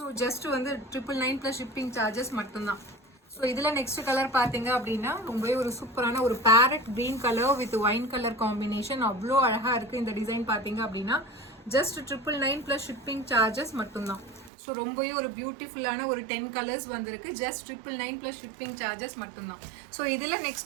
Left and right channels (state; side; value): drops out; left; at 14.5 s